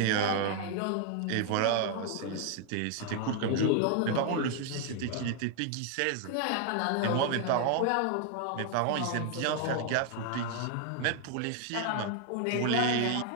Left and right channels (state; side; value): different; both; correlation 0.00